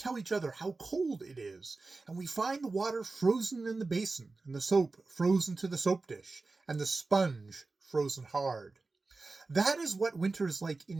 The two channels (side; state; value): left; quieter; 3.7 dB